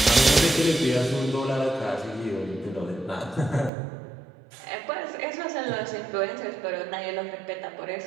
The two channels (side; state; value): left; drops out; at 3.7 s